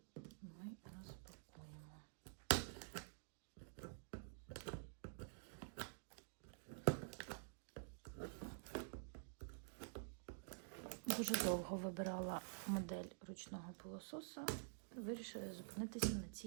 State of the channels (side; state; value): left; silent; digital silence